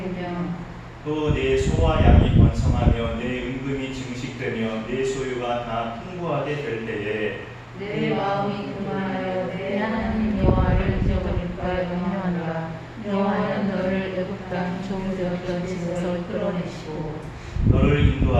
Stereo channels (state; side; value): identical; both; correlation 1.00